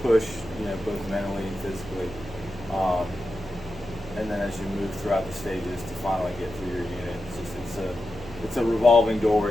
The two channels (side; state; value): right; noise; hum, 16 dB below the sound